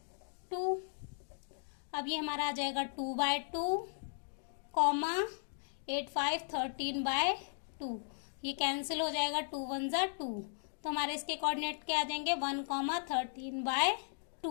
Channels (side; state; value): right; silent; digital silence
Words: अब ये हमारा आ जाएगा 2/2, 8 5 13/2, ये कैंसिल हो जाएगा, 2 1 = 2, तो हमारे इसके कोऑर्डिनेट क्या आ जाएंगे 1,